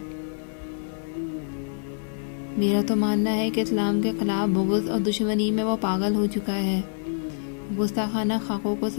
میرا تو ماننا ہے کہ اسلام کے خلاف بغض اور دشمنی میں وہ پاگل ہو چکا ہے۔ گستاخانہ خاکوں کو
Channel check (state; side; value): silent; right; digital silence